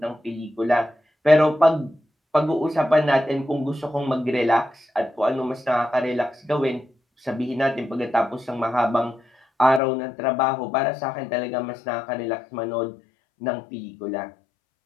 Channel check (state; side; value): drops out; right; at 9.8 s